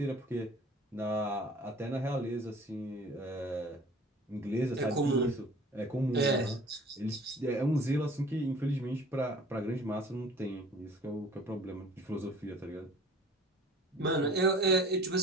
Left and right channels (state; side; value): normal; both; correlation 0.47